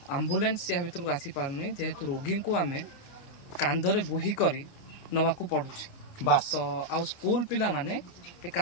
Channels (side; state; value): right; late; 29 ms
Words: आम्बुलेंस या भर को आसी पारनी जेहेतु रोगी को आम कांधरे बोही करी नवाकू पड़ुछ बास तो आउ स्कूल पिला माने ए